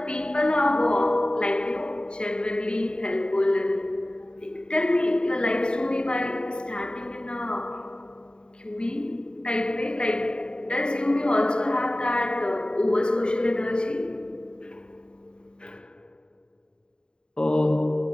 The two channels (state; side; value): late; right; 0.049 ms